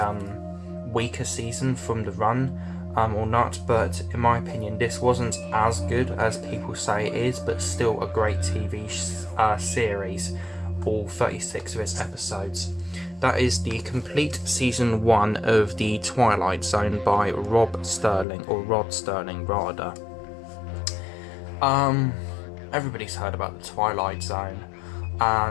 weaker season from the run or not, but in my opinion, this wasn't as good as people say it is, but still a great TV series, all 36 of its episodes. That is the complete season 1 of The Twilight Zone by Rod Sterling rather. Everybody's heard about The Twilight Zone,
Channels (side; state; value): right; drops out; at 18.2 s